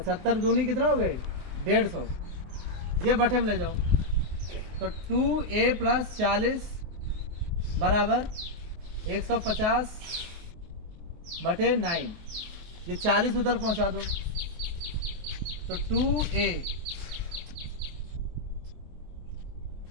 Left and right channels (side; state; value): left; late; 23 ms